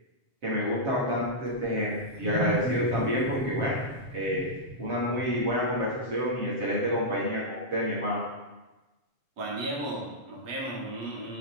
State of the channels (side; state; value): left; late; 7.3 ms